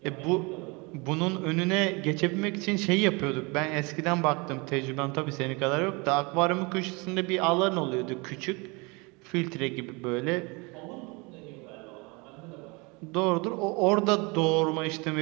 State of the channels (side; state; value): left; quieter; 27.9 dB